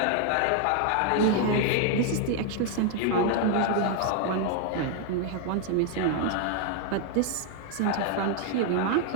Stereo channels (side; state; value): both; different; correlation 0.00